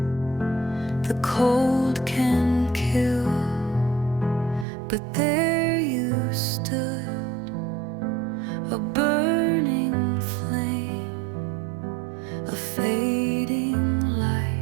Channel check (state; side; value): drops out; left; at 4.7 s